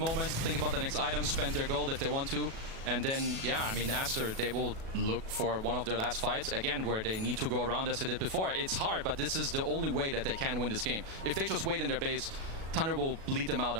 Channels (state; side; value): late; left; 37 ms